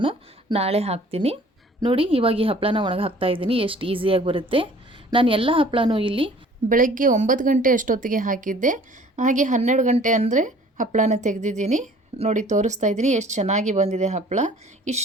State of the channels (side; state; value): both; normal; correlation 0.52